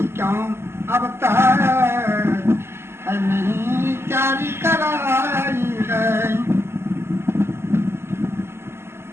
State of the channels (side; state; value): left; late; 0.12 ms